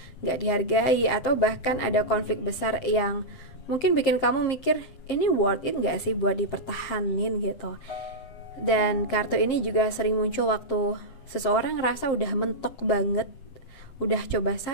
gak dihargai, atau bahkan ada konflik besar yang mungkin bikin kamu mikir, ini worth it gak sih buat dipertahanin gitu. Dan kartu ini juga sering muncul waktu seseorang ngerasa udah mentok banget, udah coba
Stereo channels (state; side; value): late; right; 7.6 ms